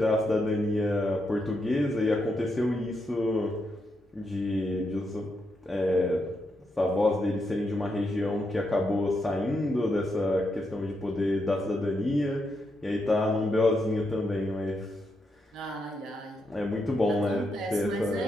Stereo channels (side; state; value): both; normal; correlation 0.82